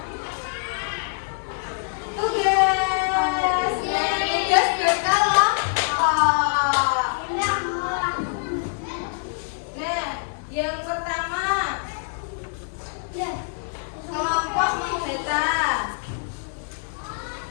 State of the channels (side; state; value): right; silent; digital silence